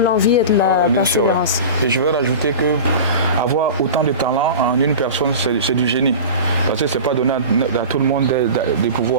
et de la persévérance. Sûr, ouais. Et je veux rajouter que avoir autant de talent en une personne, c'est du génie. Parce que ce n'est pas donné à tout le monde de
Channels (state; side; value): inverted; both; correlation -0.33